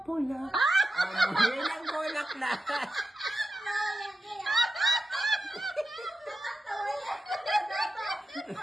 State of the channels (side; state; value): both; normal; correlation 0.91